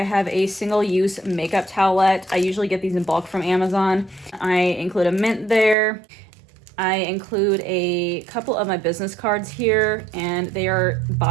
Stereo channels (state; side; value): drops out; left; at 5.8 s